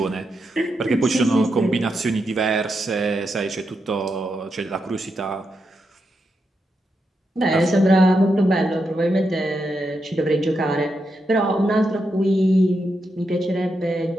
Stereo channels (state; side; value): normal; both; correlation 0.84